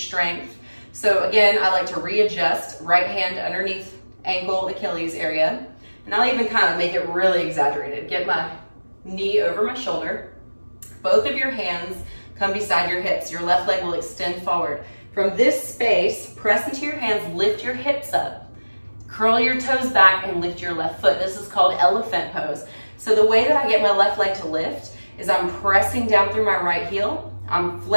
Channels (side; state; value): both; inverted; correlation -1.00